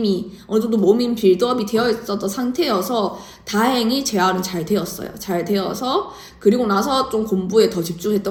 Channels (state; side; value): identical; both; correlation 1.00